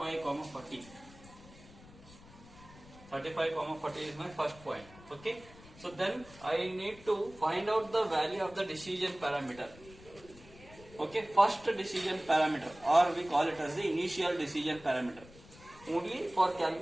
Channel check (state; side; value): noise; left; rumble, 21 dB below the sound